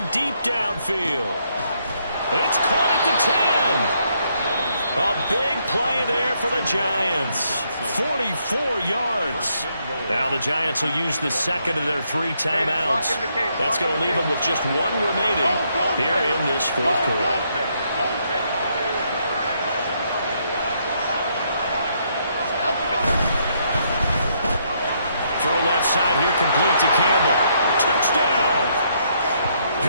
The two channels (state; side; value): inverted; both; correlation -0.73